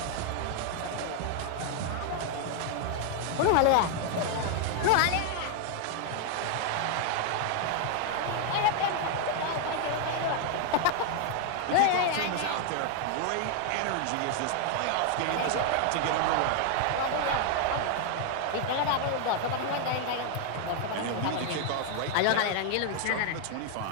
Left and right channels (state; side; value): different; both; correlation 0.00